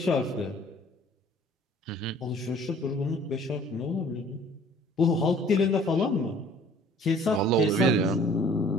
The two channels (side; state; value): both; normal; correlation 0.53